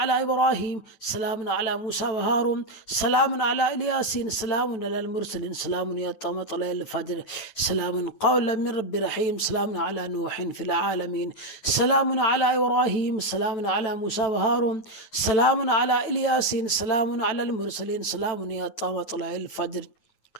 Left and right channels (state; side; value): late; right; 9.0 ms